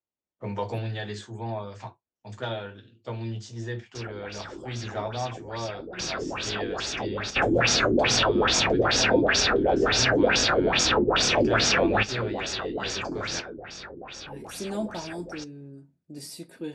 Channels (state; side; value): identical; both; correlation 1.00